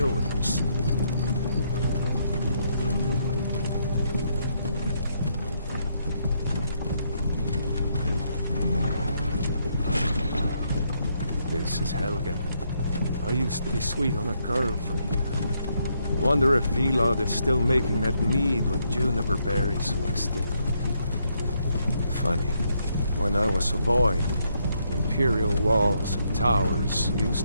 with this. This is Helgen. I used to be sweet on a girl from here. Wonder if Vilod is still making that mead with juniper berries mixed in. Funny, when I was a boy, Imperial walls and towers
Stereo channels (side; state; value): both; inverted; correlation -0.75